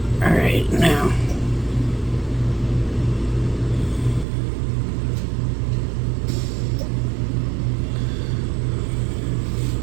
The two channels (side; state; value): left; drops out; at 4.2 s